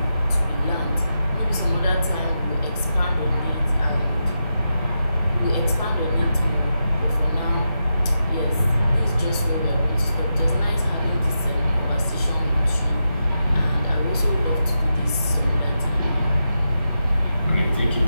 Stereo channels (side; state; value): both; inverted; correlation -0.87